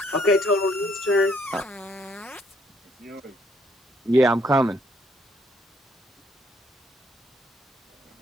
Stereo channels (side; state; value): both; normal; correlation 0.67